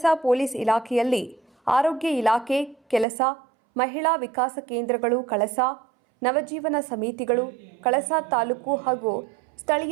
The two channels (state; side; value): drops out; left; at 3.1 s